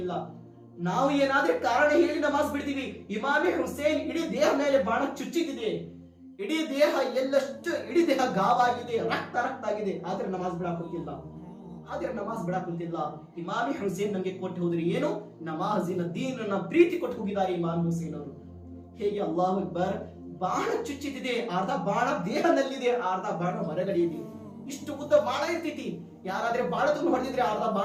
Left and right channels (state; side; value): identical; both; correlation 1.00